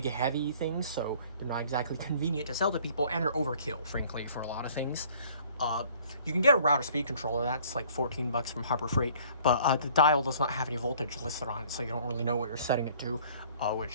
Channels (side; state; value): both; inverted; correlation -0.54